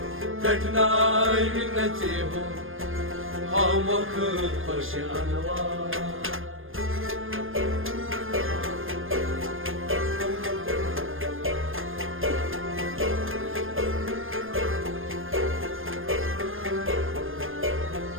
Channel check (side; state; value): left; late; 0.59 ms